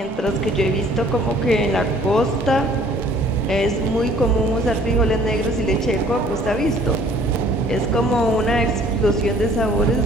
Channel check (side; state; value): both; normal; correlation 0.56